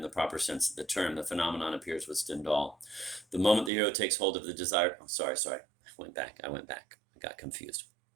the proper sense of the term. The phenomenon appears with Stendhal. The moment the hero takes hold of the desired... Oh, sorry. I went back. I got confused.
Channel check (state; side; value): drops out; left; at 3.7 s